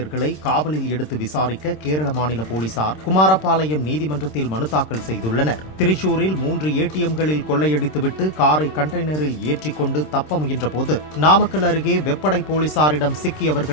காவலில் எடுத்து விசாரிக்க கேரள மாநில போலீசார் குமாரபாளையம் நீதிமன்றத்தில் மனு தாக்கல் செய்துள்ளனர். திரிசூரில் 3 ஏடிஎம்களில் கொள்ளையடித்துவிட்டு காரை கண்டெய்னரில் ஏற்றிக்கொண்டு தப்ப முயன்றபோது நாமக்கல் அருகே வெப்படை போலீசாரிடம்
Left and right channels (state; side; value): late; right; 26 ms